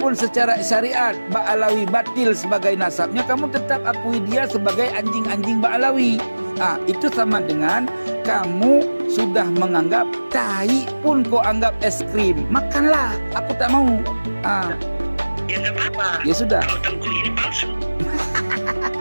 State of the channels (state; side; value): inverted; both; correlation -1.00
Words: secara syariat Ba'alawi batil sebagai nasabnya, kamu tetap akui dia sebagai anjing-anjing Ba'alawi. Itu sama dengan kamu sudah menganggap tai pun kau anggap es krim. Makanlah, aku tak mau. Ya nggak apa-apa. Ya sudah. Kalau Tengku ini palsu.